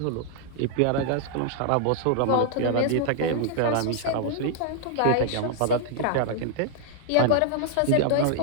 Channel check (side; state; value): both; different; correlation 0.00